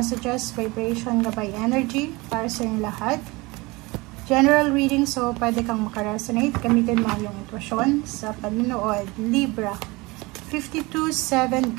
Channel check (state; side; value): quieter; left; 23.8 dB